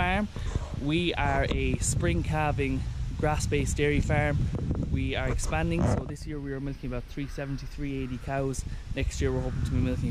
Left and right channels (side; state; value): both; identical; correlation 1.00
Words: We are a spring calving grass-based dairy farm. We are expanding, so this year we are milking about 370, 380 cows. Next year we're hoping to be